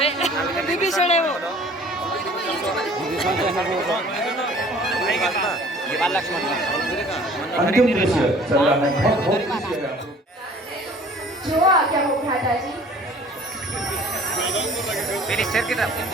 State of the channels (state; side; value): normal; both; correlation 0.50